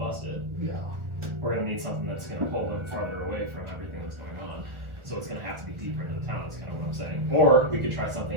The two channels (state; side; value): late; left; 1.4 ms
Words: Yeah. we're going to need something that's going to pull them farther away from everything that's going on. So it's going to have to be deeper into the town, is kind of what I'm saying. Or we could try